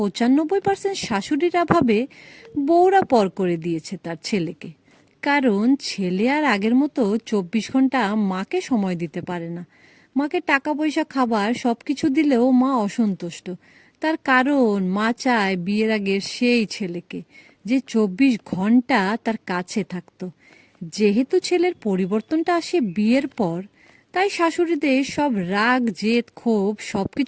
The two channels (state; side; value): identical; both; correlation 1.00